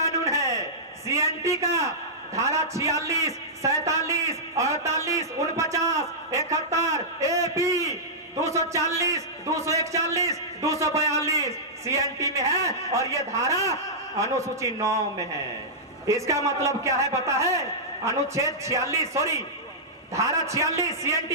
है। सीएनटी का धारा 46, 47, 48, 49, 71, एपी 240, 241, 242 सीएनटी में है और ये धारा अनुसूची 9 में है। इसका मतलब क्या है पता है? अनुच्छेद 46 धारा 46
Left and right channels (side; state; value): both; normal; correlation -0.13